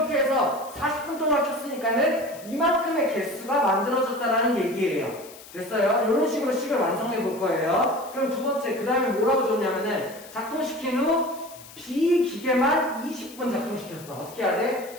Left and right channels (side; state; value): left; noise; hiss, 19 dB below the sound